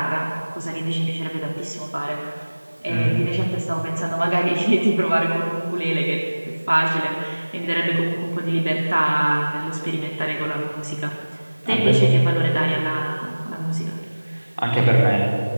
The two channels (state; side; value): inverted; both; correlation -1.00